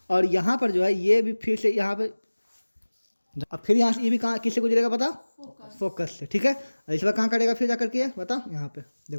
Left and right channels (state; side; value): inverted; both; correlation -1.00